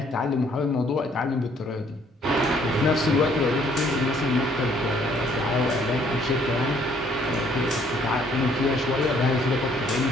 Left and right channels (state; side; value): normal; both; correlation 0.63